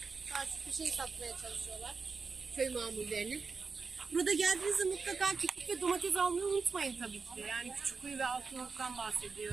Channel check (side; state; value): left; quieter; 4.8 dB